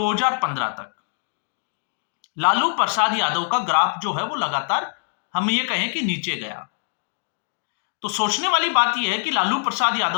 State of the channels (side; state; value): right; silent; digital silence